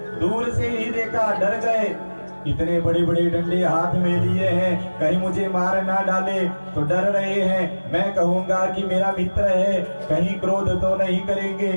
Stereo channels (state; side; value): inverted; both; correlation -1.00